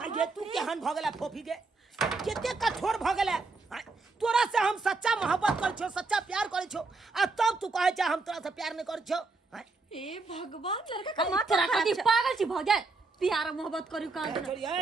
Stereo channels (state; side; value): quieter; left; 3.8 dB